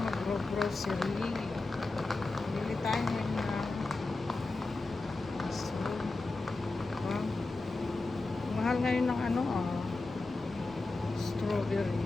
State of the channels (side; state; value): right; quieter; 3.3 dB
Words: mag-grocery. Bili tayo ngayon na mushroom. Wow. Mahal ngayon ng ano strawberry.